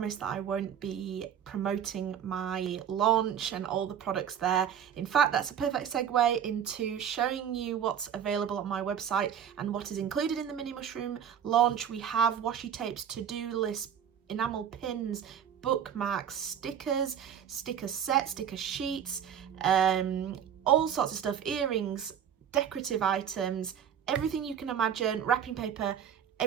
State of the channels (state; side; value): quieter; left; 8.8 dB